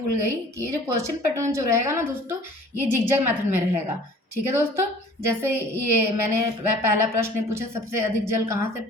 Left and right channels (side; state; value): both; normal; correlation 0.49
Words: गई कि ये जो क्वेश्चन पैटर्न जो रहेगा ना दोस्तों, ये जिगजैग मेथड में रहेगा। ठीक है दोस्तों, जैसे ये मैंने पहला प्रश्न पूछा सबसे अधिक जल कहाँ से